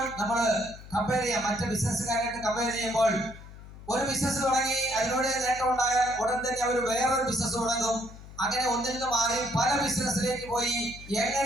നമ്മൾ കമ്പയർ ചെയ്യാം, മറ്റ് ബിസിനസ്സുകാരായിട്ട് കമ്പയർ ചെയ്യുമ്പോൾ ഒരു ബിസിനസ് തുടങ്ങി അതിലൂടെ നേട്ടം ഉണ്ടായാൽ ഉടൻ തന്നെ അവർ വേറൊരു ബിസിനസ് തുടങ്ങും. അങ്ങനെ ഒന്നിൽ നിന്ന് മാറി പല ബിസിനസ്സിലേക്ക് പോയി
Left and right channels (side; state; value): left; noise; hum, 16 dB below the sound